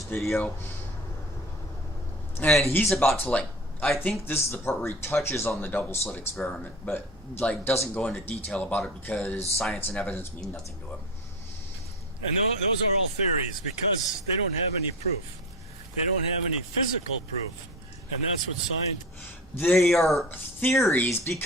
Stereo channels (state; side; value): normal; both; correlation 0.31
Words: video. And he's about to, like, I think this is the part where he touches on the double slit experiment, but like doesn't go into detail about it because science and evidence mean nothing to him. And those are all theories, because they don't have any proof. They don't have any physical proof. And that's what science... They are theories